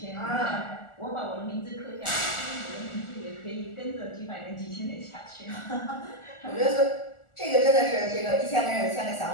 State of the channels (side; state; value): right; late; 1.4 ms